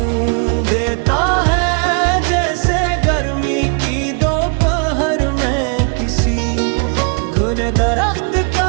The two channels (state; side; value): quieter; left; 39.0 dB